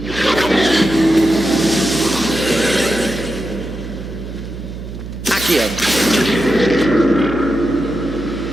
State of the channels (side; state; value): right; noise; hum, 10 dB below the sound